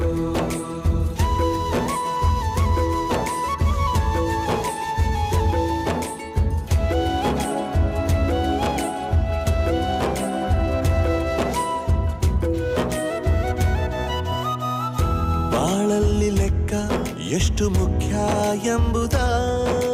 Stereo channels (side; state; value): both; identical; correlation 1.00